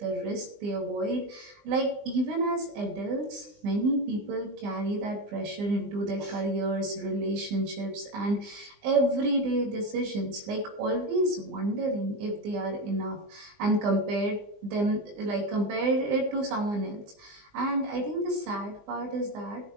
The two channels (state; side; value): late; left; 20 ms